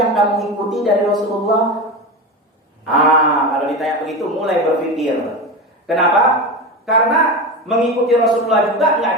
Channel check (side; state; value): both; normal; correlation 0.22